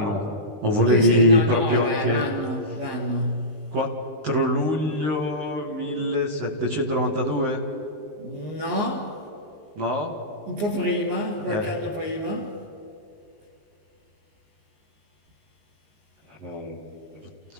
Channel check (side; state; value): left; late; 20 ms